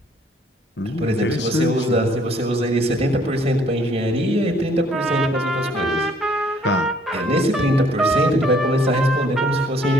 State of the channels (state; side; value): normal; both; correlation 0.62